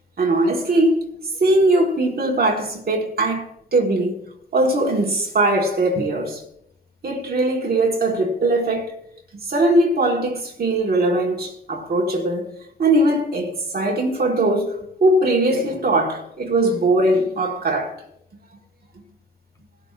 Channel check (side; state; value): both; normal; correlation 0.43